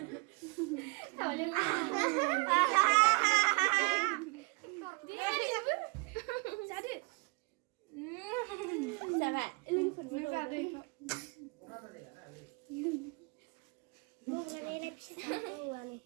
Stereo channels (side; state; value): left; quieter; 31.2 dB